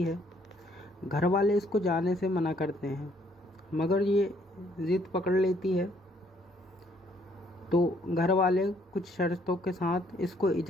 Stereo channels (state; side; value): normal; both; correlation 0.66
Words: है। घर वाले इसको जाने से मना करते हैं मगर ये ज़िद पकड़ लेती है। तो घर वाले कुछ शर्तों के साथ इसको